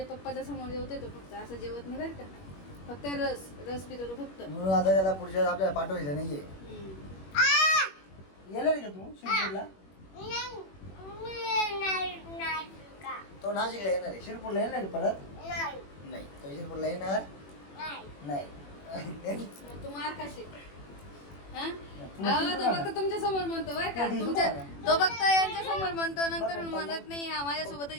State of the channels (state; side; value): late; right; 21 ms